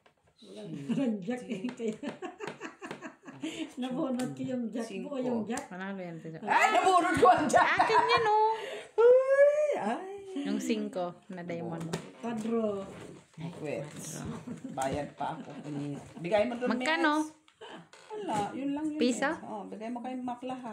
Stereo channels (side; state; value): both; identical; correlation 1.00